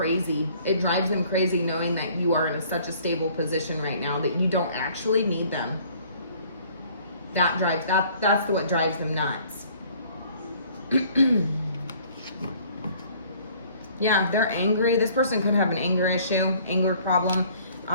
It drives them crazy knowing that you are in such a stable position right now that you don't actually need them. That's what drives them nuts. Yeah, they're angry. This person could have an anger issue, anger problem,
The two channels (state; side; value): inverted; both; correlation -0.56